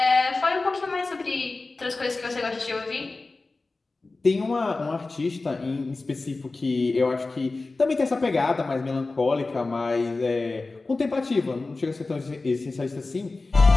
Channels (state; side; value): quieter; right; 3.5 dB